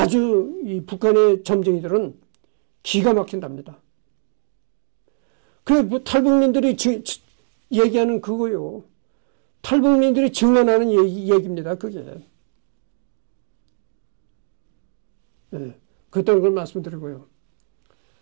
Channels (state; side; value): silent; left; digital silence